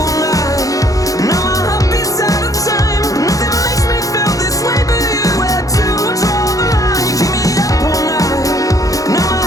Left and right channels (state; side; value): late; right; 0.17 ms